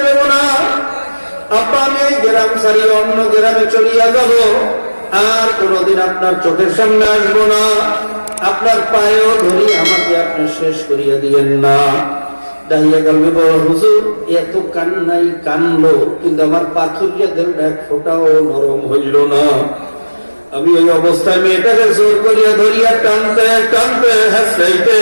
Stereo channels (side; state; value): both; inverted; correlation -1.00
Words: দেব না। আব্বা আমি এই গ্রাম ছাড়িয়ে অন্য গ্রামে চলিয়া যাব, আর কোনোদিন আপনার চোখের সামনে আসবো না। আপনার পায়েও ধরি, আমাকে আপনি শেষ করিয়া দিয়েন না। দাহিয়া কলবি বলে, হুজুর এত কান্নাই কানলো, কিন্তু আমার পাথরিয়া দেহটা এক ফোঁটাও নরম হইল না। আমি ওই অবস্থায় মেয়েটাকে জোর করিয়া ধরিয়া টানতে টানতে হাসতে